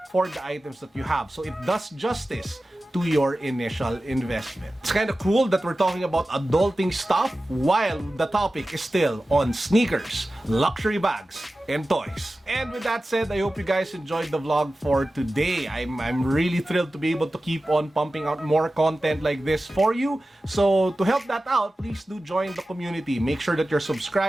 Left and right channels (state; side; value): normal; both; correlation 0.95